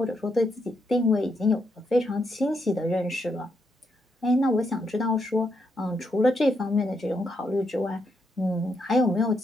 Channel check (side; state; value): both; normal; correlation 0.79